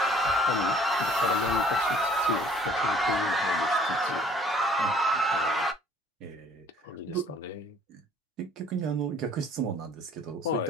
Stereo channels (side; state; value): both; normal; correlation 0.56